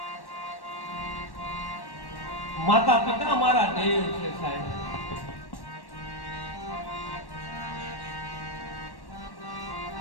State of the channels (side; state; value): right; late; 1.1 ms